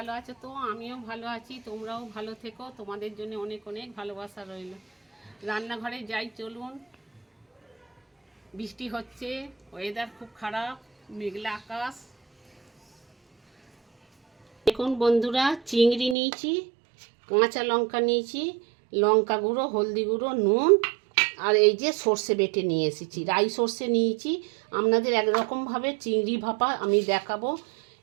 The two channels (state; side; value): drops out; left; at 16.2 s